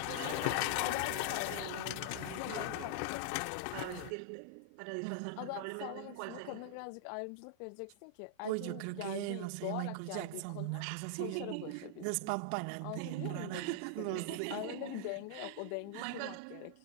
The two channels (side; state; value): both; different; correlation -0.01